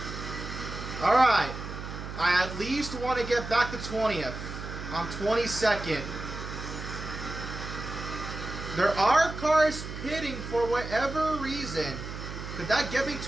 Alright. I at least want to get back to 20th. I'm 22nd. There are cars pitting for whatever reason. Could that get me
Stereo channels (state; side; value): noise; right; hum, 8 dB below the sound